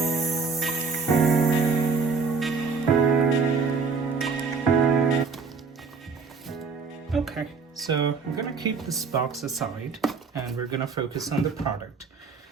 Okay, so I'm gonna keep this box aside and we're gonna focus on the product.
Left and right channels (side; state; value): left; quieter; 4.9 dB